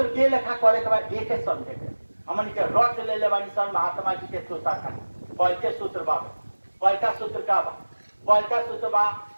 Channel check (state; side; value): inverted; both; correlation -1.00